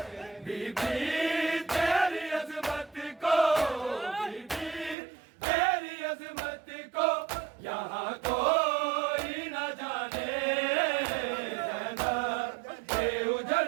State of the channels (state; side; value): drops out; left; at 5.0 s